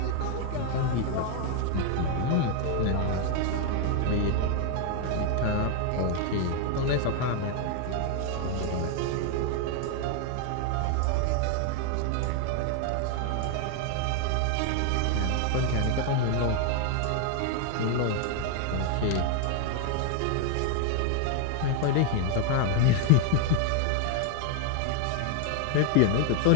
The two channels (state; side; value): different; both; correlation 0.01